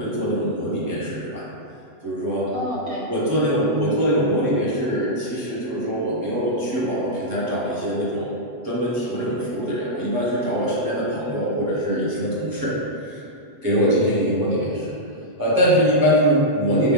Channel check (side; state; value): left; late; 7.9 ms